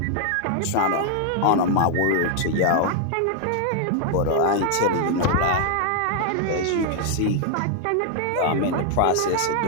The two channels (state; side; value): different; both; correlation 0.00